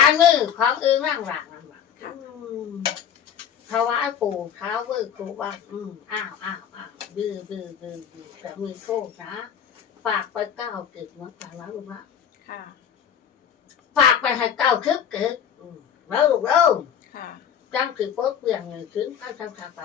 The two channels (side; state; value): right; quieter; 8.5 dB